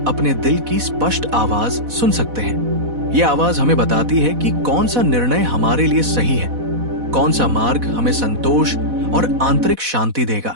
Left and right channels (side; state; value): left; late; 4.1 ms